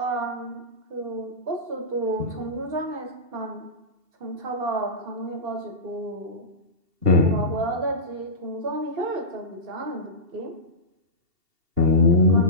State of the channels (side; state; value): left; late; 2.7 ms